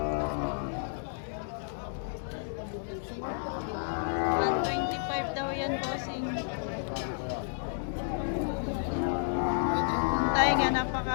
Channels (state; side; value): silent; right; digital silence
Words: daw yan, bossing. Tayo nga,